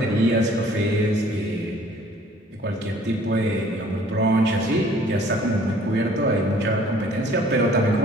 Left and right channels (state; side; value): normal; both; correlation 0.55